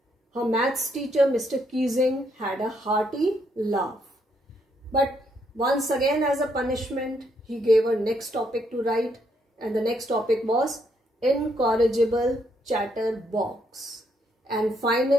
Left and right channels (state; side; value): normal; both; correlation 0.74